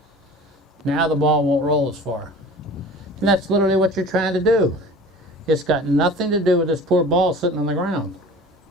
Now the ball won't roll as far. And that's literally what you're trying to do. It's got nothing to do with this poor ball sitting on the ground.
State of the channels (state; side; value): normal; both; correlation 0.42